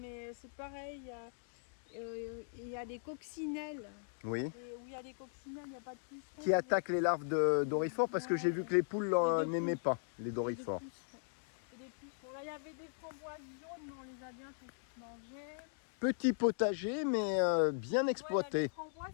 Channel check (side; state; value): right; silent; digital silence